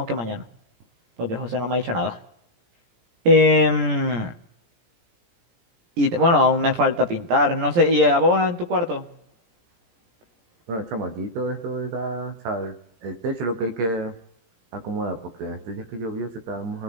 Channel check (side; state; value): left; late; 17 ms